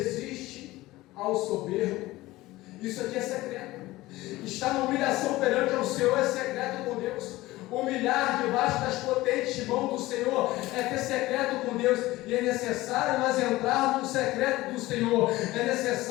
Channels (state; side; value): quieter; right; 18.3 dB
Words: ao soberbo. Isso aqui é secreto. Está na humilhação perante ao Senhor, é secreto com Deus. Humilhar debaixo das potentes mãos do Senhor é ter secreto com Deus. E é necessário nós entrarmos no secreto do Senhor. É